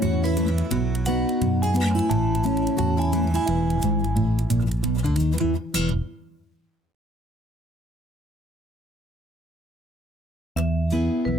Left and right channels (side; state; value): both; normal; correlation 0.68